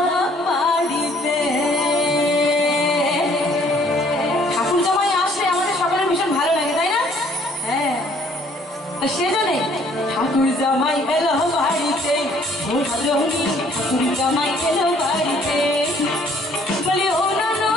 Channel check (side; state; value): both; normal; correlation 0.61